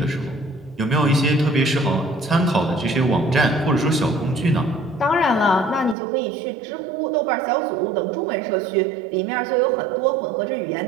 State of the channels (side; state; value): left; drops out; at 6.0 s